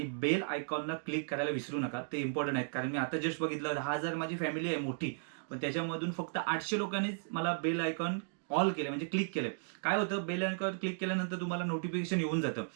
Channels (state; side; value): silent; left; digital silence